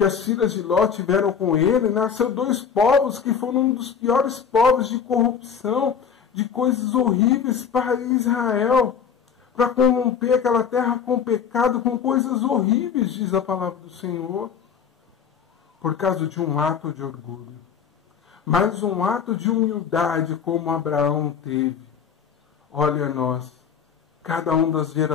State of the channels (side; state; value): right; quieter; 7.0 dB